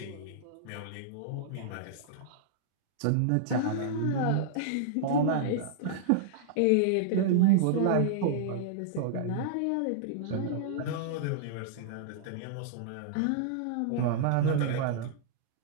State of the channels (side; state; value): both; different; correlation -0.02